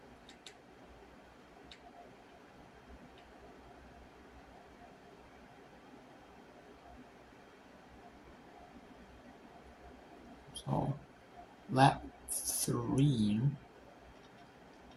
So lap 3.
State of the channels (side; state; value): both; identical; correlation 1.00